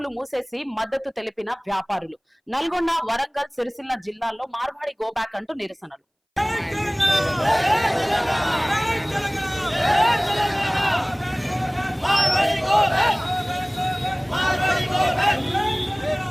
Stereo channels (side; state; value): both; identical; correlation 1.00